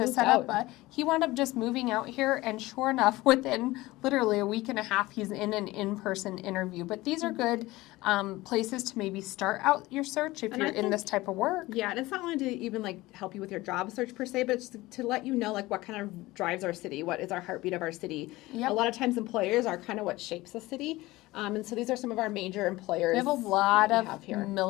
set up, he wound up just moving out here, and sure enough, within literally a week and a half, he's in an in-person interview. But these are good places to maybe start out your search if you're in this type of work. Yeah, and it's not only to even like help you with your job search per se, but it's to let you know like what kind of drives our city, what is our heartbeat of our city. Yep. A lot of times employers are kind of what shapes a city. And so these are some of our major employers. We have a lot of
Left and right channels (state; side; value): quieter; right; 19.2 dB